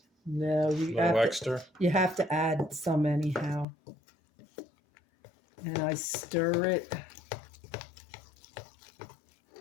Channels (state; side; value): drops out; right; at 3.7 s